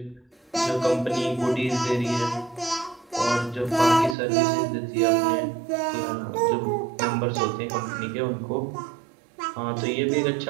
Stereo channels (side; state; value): left; drops out; at 4.2 s